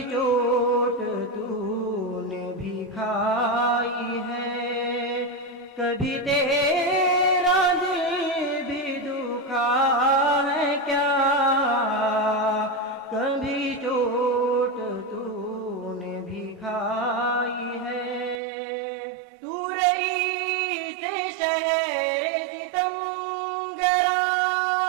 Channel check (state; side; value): drops out; left; at 18.4 s